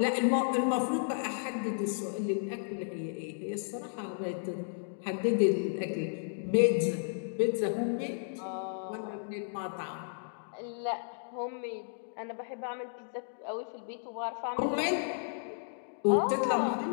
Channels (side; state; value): right; silent; digital silence